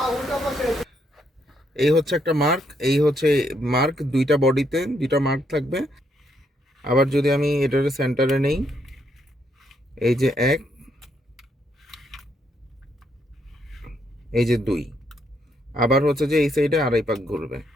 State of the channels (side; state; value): both; normal; correlation 0.75